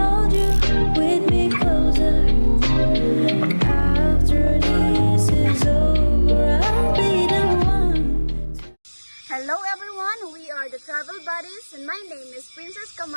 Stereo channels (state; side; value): inverted; both; correlation -1.00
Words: you we'd be closer. After this is over, I'll be the one. Hello everyone, we are the Travel Buddies and my name is Princess